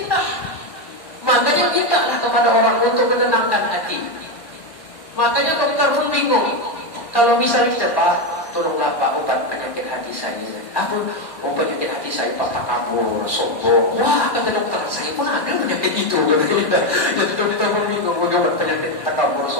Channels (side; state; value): right; late; 1.6 ms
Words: Makanya mintalah kepada orang untuk menenangkan hati. Makanya dokter pun bingung. Kalau misalnya kita Pak, tolonglah Pak obat penyakit hati saya. Apa? Oh penyakit hati saya Pak takabur, sombong. Wah kata dokter, saya pun ada penyakit itu. Jadi dokter pun bingung bagaimana penyakit takabur,